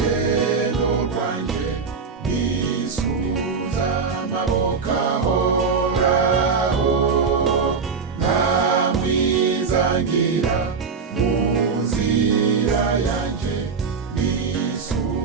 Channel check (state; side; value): quieter; left; 5.3 dB